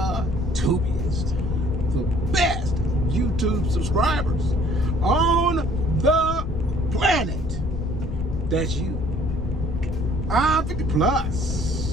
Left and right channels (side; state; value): left; noise; rumble, 6 dB below the sound